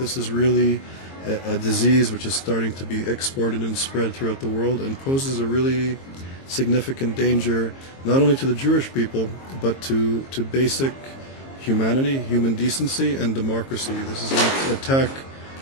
is really a disease which is starting to be exported and spread throughout the world and poses a really significant danger not only to the Jewish people but to basic humanity, human decency, and democracy. This is an attack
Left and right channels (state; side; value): late; right; 22 ms